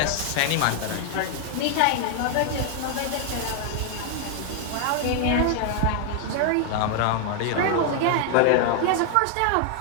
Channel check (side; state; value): both; different; correlation 0.00